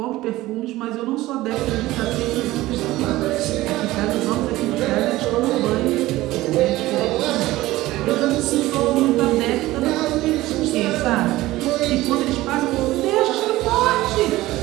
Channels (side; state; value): left; quieter; 17.5 dB